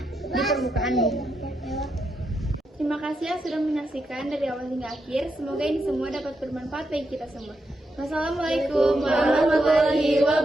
permukaan bumi. Terima kasih yang sudah menyaksikan dari awal hingga akhir. Semoga ini semua dapat bermanfaat bagi kita semua. Wassalamualaikum warahmatullahi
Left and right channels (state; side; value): normal; both; correlation 0.83